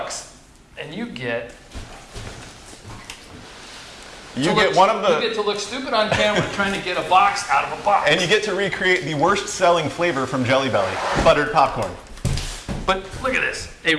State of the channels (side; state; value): both; identical; correlation 1.00